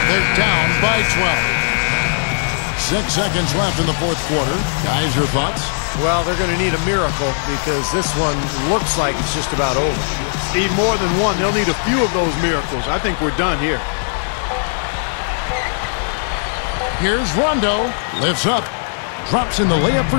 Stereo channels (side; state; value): right; silent; digital silence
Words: They're down by 12. 6 seconds left in the fourth quarter. Guys, your thoughts? Well, they're going to need a miracle because this one looks like it's just about over. Steve, more than one. They'll need a few of those miracles. I think we're done here. Here's Rondo. Lifts up. Drops in the layup